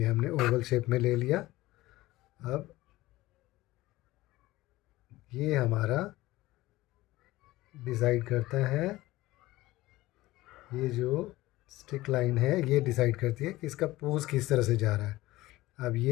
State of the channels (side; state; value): right; quieter; 18.0 dB